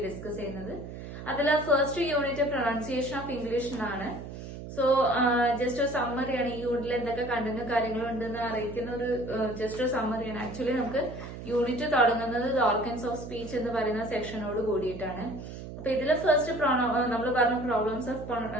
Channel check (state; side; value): noise; right; hum, 10 dB below the sound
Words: ഡിസ്കസ് ചെയ്യുന്നത്. അതിൽ first unit pronunciation of English എന്നാണ്. സോ ജസ്റ്റ് ഒരു സമ്മറിയാണ്. ഈ യൂണിറ്റിൽ എന്തൊക്കെ കണ്ടന്റ് കാര്യങ്ങളും ഉണ്ടെന്ന് അറിയിക്കുന്ന ഒരു ജസ്റ്റ് ഒരു സമ്മറിയാണ്. ആക്ച്വലി നമുക്ക് യൂണിറ്റ് തുടങ്ങുന്നത് ദ ഓർഗൻസ് ഓഫ് സ്പീച്ച് എന്ന് പറയുന്ന സെക്ഷനോട് കൂടിയിട്ടാണ്. അപ്പൊ ഇതില് ഫസ്റ്റ് നമ്മൾ പറഞ്ഞു പ്രോബ്ലംസ് ഓഫ്